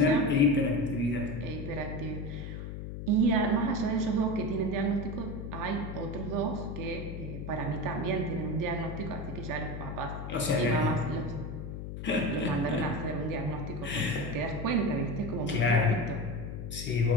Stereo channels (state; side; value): noise; left; hum, 7 dB below the sound